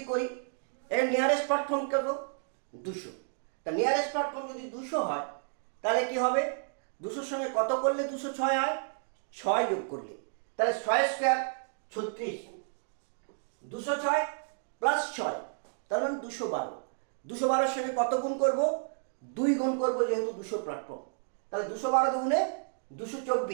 করি, এর নিয়ারেস্ট প্ল্যাটফর্ম করব 200। তা নিয়ারেস্ট প্ল্যাটফর্ম যদি 200 হয় তাহলে কি হবে? 200 সঙ্গে কত করলে 206 হয়? 6 যোগ করলে, তাহলে 6 স্কোয়ার 36, 206 প্লাস 6 তার মানে 212। 212 সঙ্গে কত গুণ করব? 2 গুণ করব, যেহেতু 200 প্ল্যাটফর্ম, তাহলে 212 দুগুণে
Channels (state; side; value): silent; left; digital silence